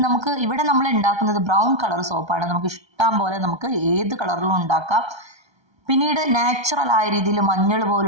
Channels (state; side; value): late; left; 1.3 ms